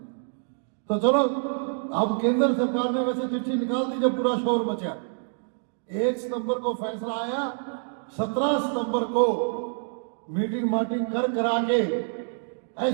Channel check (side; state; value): left; silent; digital silence